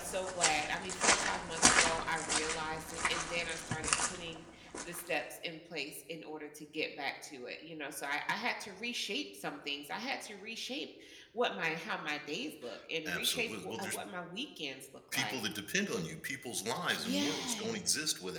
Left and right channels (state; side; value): identical; both; correlation 1.00